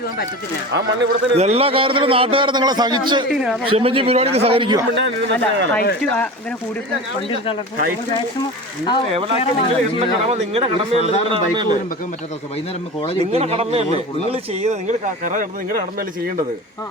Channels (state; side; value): normal; both; correlation 0.31